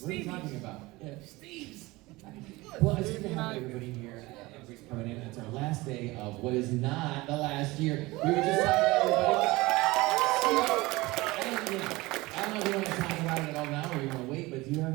What are you talking about? Yeah. Steve's. Well, it's good to have everybody here. Everybody's coming in. It's our last day of what is not the last year. We were just talking to everybody. I don't know if you want to talk about it at all now or you want to wait, but do you have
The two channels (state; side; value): quieter; left; 21.3 dB